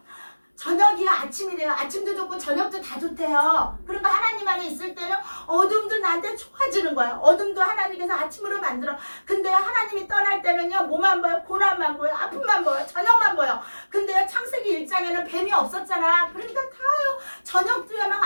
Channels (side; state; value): both; inverted; correlation -1.00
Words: 저녁이야 아침이래요. 아침도 좋고 저녁도 다 좋대요. 그러니까 하나님 안에 있을 때는 어둠도 나한테 좋아지는 거야. 어둠도 하나님께서 아침으로 만들어. 근데 하나님이 떠날 때는요 뭐만 보여? 고난만 보여. 아픔만 보여. 저녁만 보여. 근데요 창세기 1장에는 뱀이 없었잖아. 그러니까 다요 저녁도야